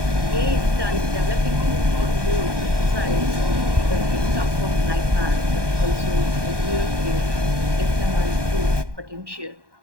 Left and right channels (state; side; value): late; left; 1.2 ms